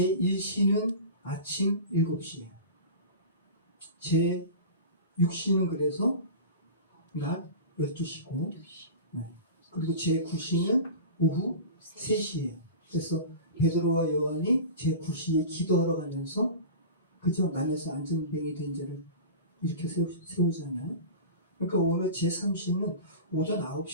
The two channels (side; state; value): both; inverted; correlation -0.33